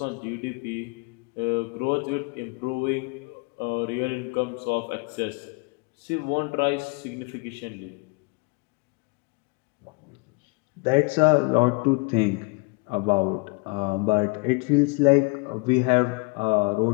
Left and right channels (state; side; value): quieter; right; 30.3 dB